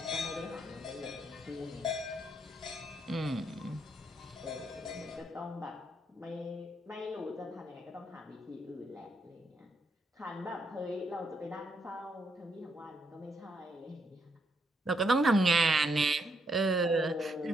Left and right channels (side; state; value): both; normal; correlation 0.76